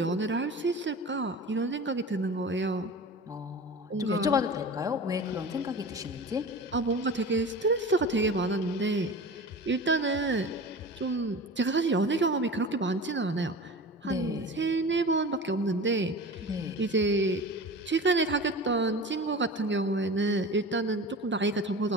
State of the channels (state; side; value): normal; both; correlation 0.34